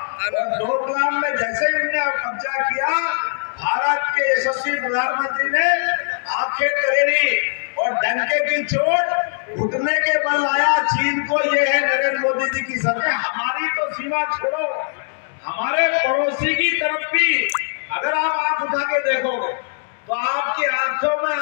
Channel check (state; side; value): silent; right; digital silence